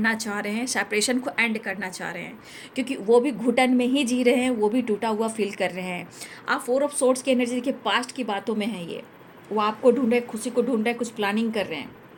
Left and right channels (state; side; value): identical; both; correlation 1.00